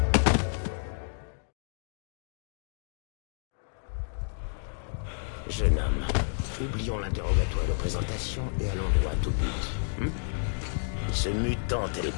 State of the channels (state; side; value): silent; right; digital silence